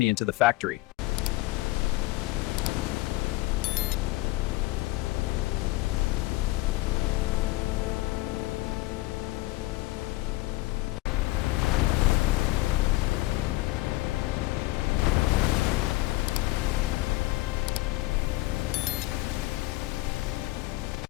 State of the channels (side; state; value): right; quieter; 20.3 dB